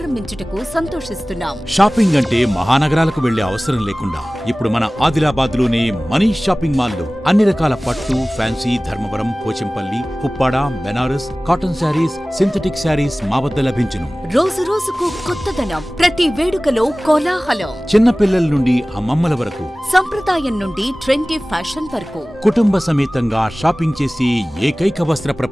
సంతోషిస్తున్నాం. షాపింగ్ అంటే మహానగరాలకు వెళ్లే అవసరం లేకుండా ఇప్పుడు మన ఆదిలాబాద్ లోనే మనీష్ షాపింగ్ మాల్ లో అన్ని రకాల పట్టు, fancy, Dharmavaram, Pochampally, Puppada, Banaras, cotton sarees, synthetic sarees మా వద్ద లభించును. రోజు రోజుకు కొత్తదనం, ప్రతి వేడుకలో కోలాహలం. చిన్న పిల్లల నుండి అమ్మమ్మల వరకు, సంప్రదాయం నుండి ట్రెండీ ఫ్యాషన్ వరకు కుటుంబ సమేతంగా షాపింగ్ చేసి ఏకైక వస్త్ర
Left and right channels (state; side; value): normal; both; correlation 0.98